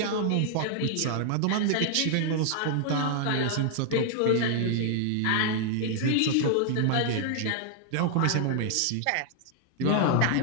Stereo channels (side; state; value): both; different; correlation 0.00